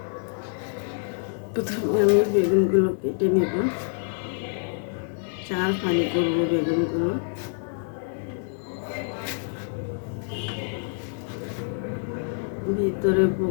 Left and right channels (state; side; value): silent; right; digital silence